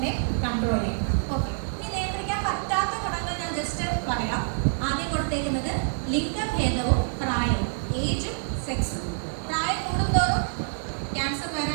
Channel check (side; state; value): left; silent; 60 dB below the other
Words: കൺട്രോൾ ചെയ്യാൻ. ഓക്കെ, ഇനി നിയന്ത്രിക്കാൻ പറ്റാത്ത ഘടകങ്ങൾ ഞാൻ ജസ്റ്റ് പറയാം. ആദ്യം കൊടുത്തേക്കുന്നത് ലിംഗഭേദവും പ്രായവും, ഏജും സെക്സും. പ്രായം കൂടുന്തോറും ക്യാൻസർ